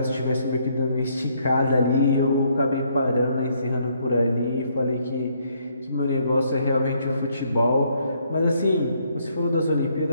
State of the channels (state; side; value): inverted; both; correlation -0.70